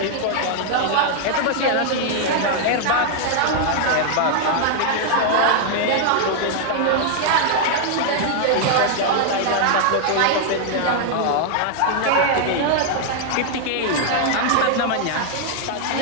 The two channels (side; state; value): both; different; correlation 0.00